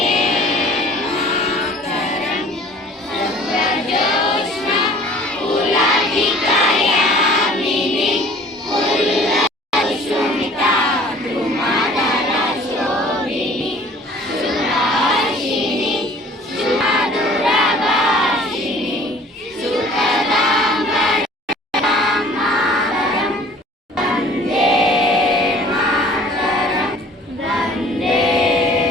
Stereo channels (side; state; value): both; normal; correlation 0.50